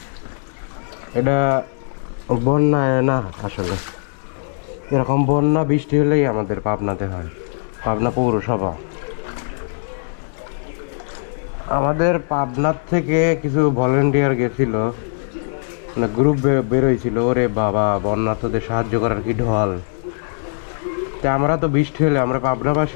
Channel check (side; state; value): right; silent; 66 dB below the other